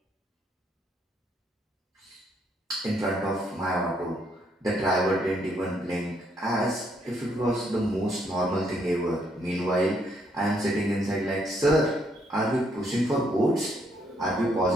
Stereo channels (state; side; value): normal; both; correlation 0.72